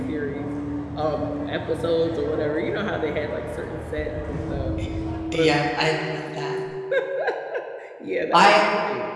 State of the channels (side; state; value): both; identical; correlation 1.00